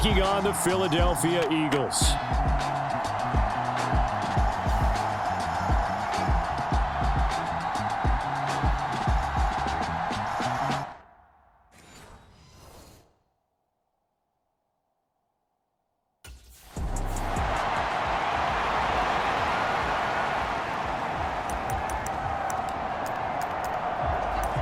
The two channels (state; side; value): identical; both; correlation 1.00